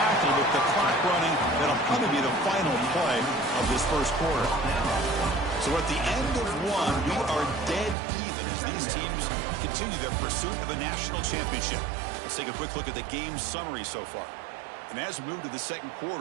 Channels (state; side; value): drops out; left; at 8.0 s